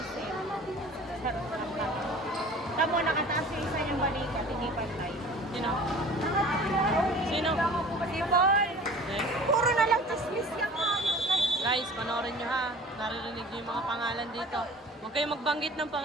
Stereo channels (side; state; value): both; normal; correlation 0.44